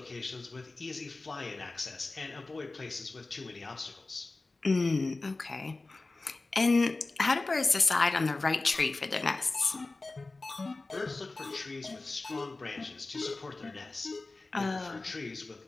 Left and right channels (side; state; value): right; quieter; 3.3 dB